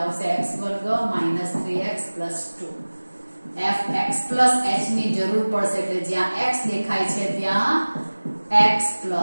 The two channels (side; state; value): both; inverted; correlation -1.00